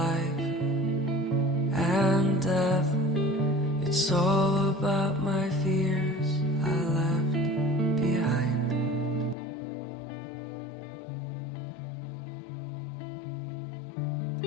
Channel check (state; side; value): drops out; right; at 9.3 s